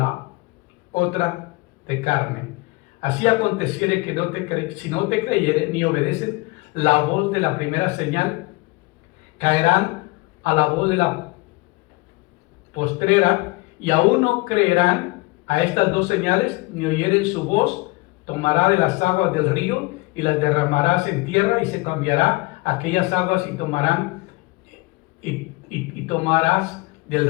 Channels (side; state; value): right; quieter; 24.3 dB